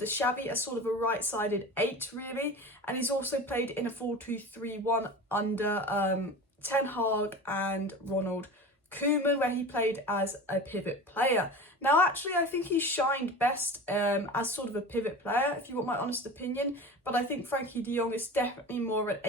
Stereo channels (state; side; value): normal; both; correlation 0.33